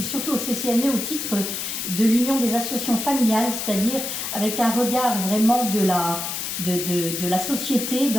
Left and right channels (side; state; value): left; noise; hiss, 4 dB below the sound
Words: surtout au CCNE au titre de l'Union des associations familiales, c'est-à-dire avec un regard vraiment de la société